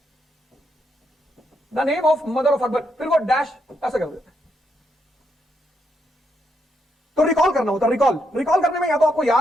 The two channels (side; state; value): both; normal; correlation 0.79